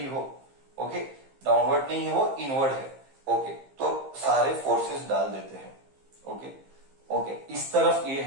हो, ओके? डाउनवर्ड नहीं है वो, इनवर्ड है, ओके? तो सारे फोर्सेस डाल देते हैं, ओके? ओके, इस तरफ ये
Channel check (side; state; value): left; late; 15 ms